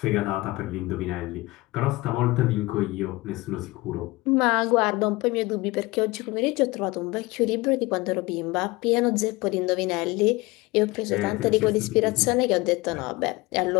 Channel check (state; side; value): quieter; right; 21.7 dB